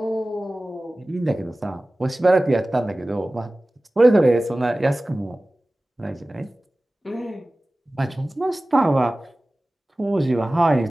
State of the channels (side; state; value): both; normal; correlation 0.97